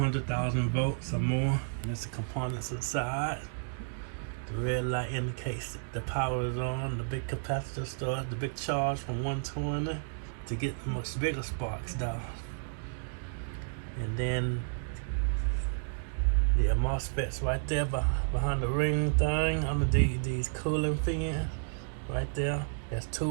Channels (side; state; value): left; silent; digital silence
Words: volts or more. And there's the components inside. The red light indicates the power is on. The big capacitor starts, the big charge from 120 to get much bigger sparks down. And then the MOSFETs right there behind the ring thing, under these cooling fans right there. There's